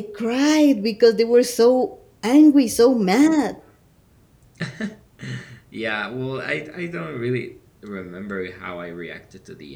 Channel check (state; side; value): identical; both; correlation 1.00